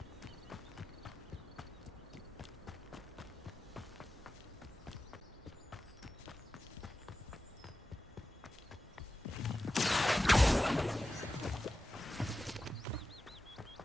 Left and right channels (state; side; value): normal; both; correlation 0.93